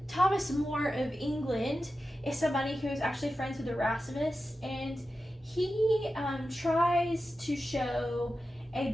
Thomas More of England is somebody who is actually friends with Erasmus, and he tries to show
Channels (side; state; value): both; normal; correlation 0.92